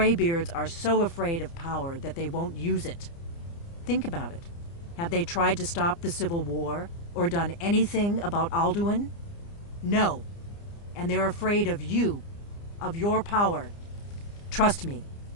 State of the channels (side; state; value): right; late; 29 ms